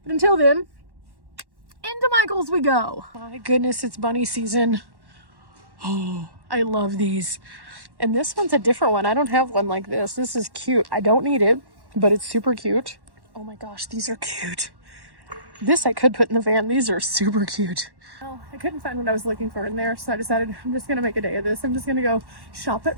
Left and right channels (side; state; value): left; late; 1.1 ms